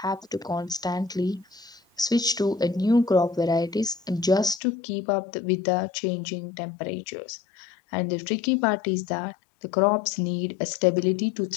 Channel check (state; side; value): drops out; right; at 4.6 s